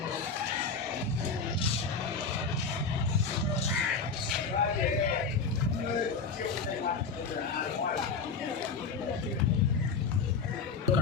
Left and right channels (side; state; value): right; quieter; 4.9 dB